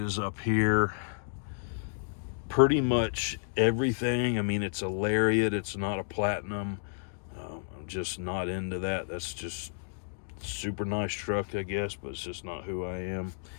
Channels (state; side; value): silent; right; digital silence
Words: up here. Pretty much everything. I mean, it's a Lariat. It's not a Platinum. I'm just not into that. That's just super nice truck, I guess, but it's just not who I am.